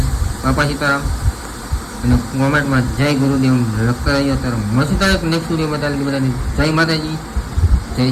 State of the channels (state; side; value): identical; both; correlation 1.00